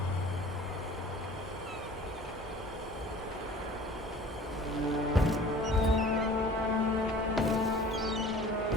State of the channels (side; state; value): both; normal; correlation 0.46